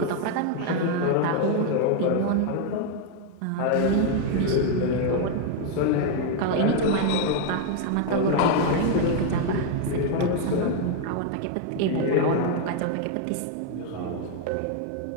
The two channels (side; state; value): both; different; correlation 0.00